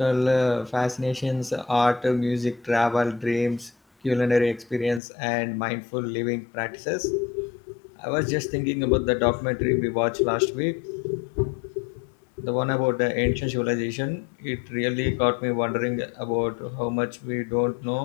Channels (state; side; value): drops out; right; at 5.0 s